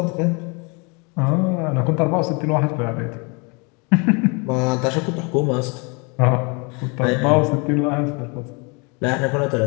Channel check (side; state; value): right; quieter; 31.3 dB